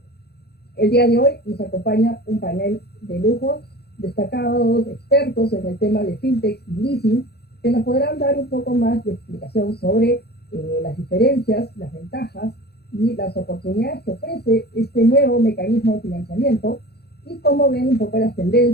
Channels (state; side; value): late; right; 0.47 ms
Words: El día de hoy nos acompaña un panel de lujo, destacados expertos en el tema de fintech y leasing, que nos podrán dar un poco más de explicación sobre las diferencias, las ventajas y las oportunidades que ofrece este nuevo mecanismo de financiamiento, y cómo ven un poco las